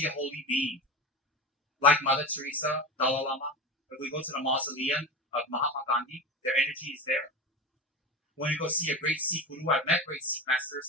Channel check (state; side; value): normal; both; correlation 0.26